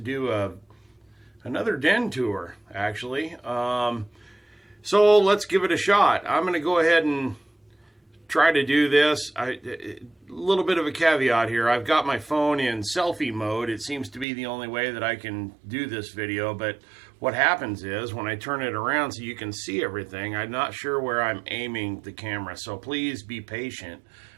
another den tour, actually. So let's give it a shot. I'm going to go ahead and try to do this. A little bit of a caveat here. I've got my phone in selfie mode. It seems to be the only way that I can do this video, but what happens is when I turn it around so you can see everything, I'm not sure where I'm aiming the camera. So please be patient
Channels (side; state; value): left; drops out; at 14.2 s